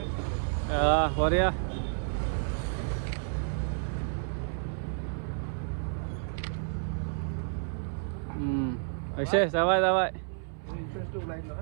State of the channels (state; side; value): silent; left; 57 dB below the other